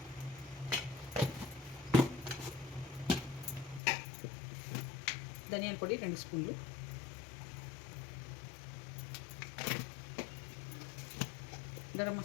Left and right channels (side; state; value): right; drops out; at 3.8 s